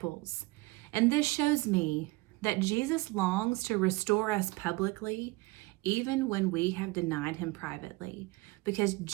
And this shows me that Jesus longs to restore us publicly, even when we have denied him privately, because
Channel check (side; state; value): left; quieter; 22.6 dB